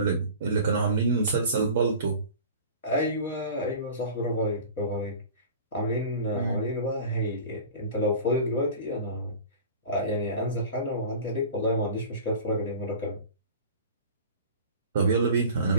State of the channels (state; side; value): inverted; both; correlation -0.39